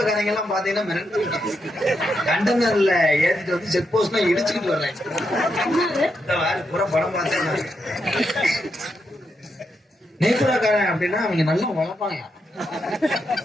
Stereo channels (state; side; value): normal; both; correlation 0.83